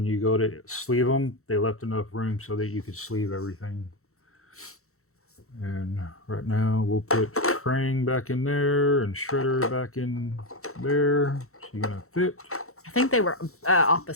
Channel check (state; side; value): late; right; 0.63 ms